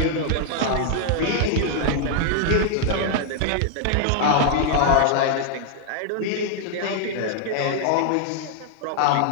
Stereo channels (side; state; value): both; different; correlation 0.00